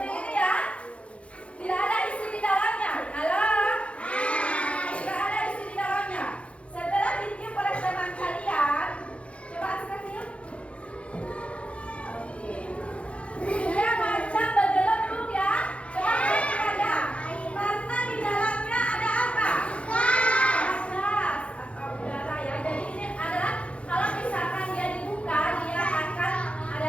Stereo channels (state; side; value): late; right; 0.061 ms